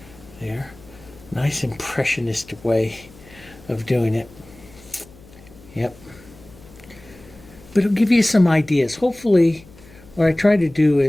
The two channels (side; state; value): left; noise; hum, 23 dB below the sound